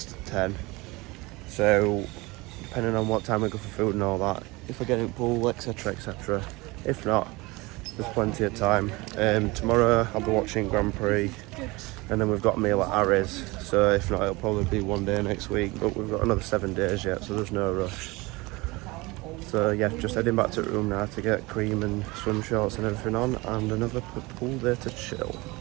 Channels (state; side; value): quieter; left; 23.3 dB